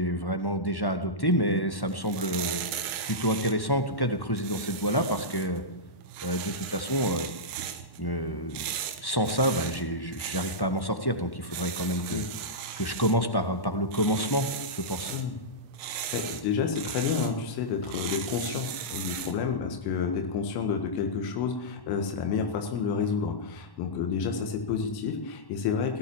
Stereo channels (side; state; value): right; late; 1.0 ms